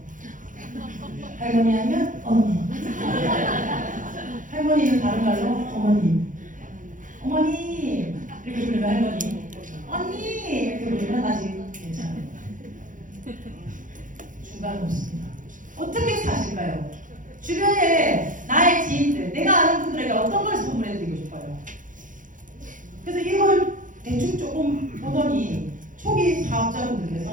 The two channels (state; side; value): late; left; 0.38 ms